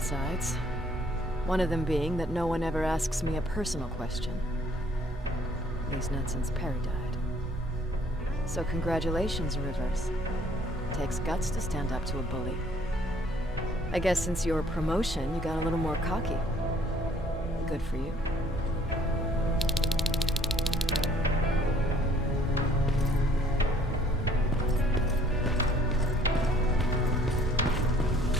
One of them being that no one ever asks me a personal question. At least not since Perry died. So congratulations, Rivers. Takes guts to stand up to a bully. I guess since your promotion, you got a little more cocky. Good for you.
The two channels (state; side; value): normal; both; correlation 0.60